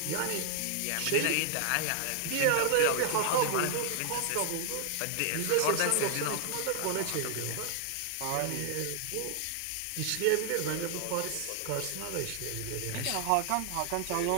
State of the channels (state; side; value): different; both; correlation 0.00